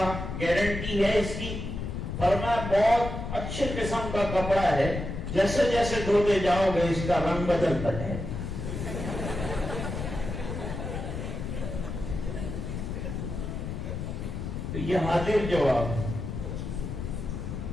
گارنٹی ہے اس کی؟ فرمایا بہت اچھے قسم کا کپڑا ہے، جیسے جیسے دھوتے جاؤ گے اس کا رنگ بدلتا ہے۔ تو یہ حاضر جواب۔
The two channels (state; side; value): noise; left; rumble, 5 dB below the sound